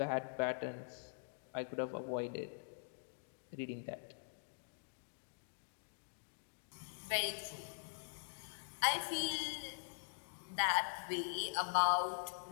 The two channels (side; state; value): right; silent; digital silence